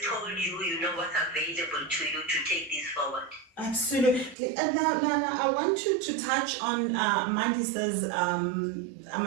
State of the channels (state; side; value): drops out; left; at 4.4 s